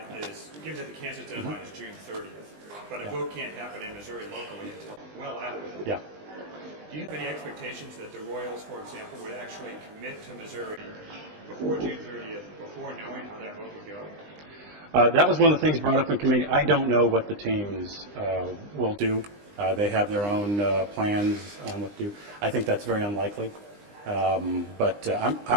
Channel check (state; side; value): late; left; 20 ms